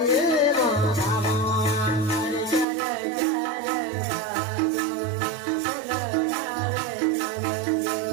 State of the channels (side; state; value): left; drops out; at 2.7 s